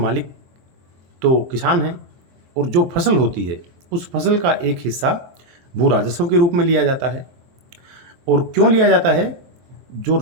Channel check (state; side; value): late; left; 23 ms